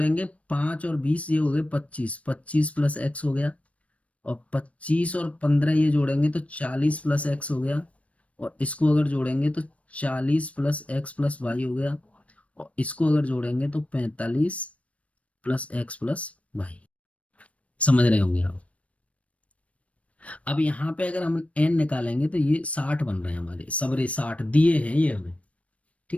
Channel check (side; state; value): right; late; 0.065 ms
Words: 5 और 20, ये हो गए 25, 25 प्लस x हो गया, और 25 और 15 ये जोड़ेंगे तो 40 प्लस x हो गया, और इसको अगर जोड़ेंगे तो 40 प्लस x प्लस y हो गया, और इसको अगर जोड़ेंगे तो 45 प्लस x प्लस y। समझ रहे होंगे आप। अब यहाँ पे अगर हम n निकालेंगे तो ये 60 बन रहे हैं हमारे, सबरे 60 दिए हैं ये हमें।